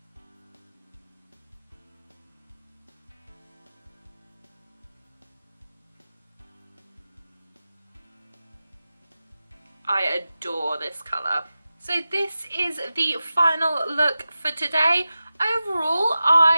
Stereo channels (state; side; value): inverted; both; correlation -0.94